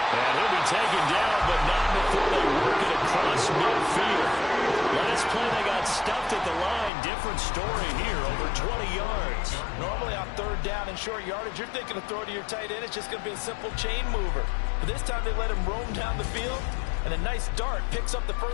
And he'll be taken down, but not before they work it across midfield. Last play they got stuffed at the line. Different story here, over 20 yards. Normally on 3rd down and short yardage, you're thinking of throw to your tight end. It's just going to be a simple chain mover. But this time they let him roam down the field. And a nice dart picks up the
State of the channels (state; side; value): drops out; right; at 6.9 s